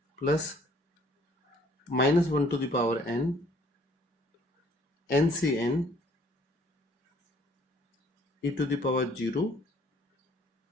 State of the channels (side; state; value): both; normal; correlation 0.60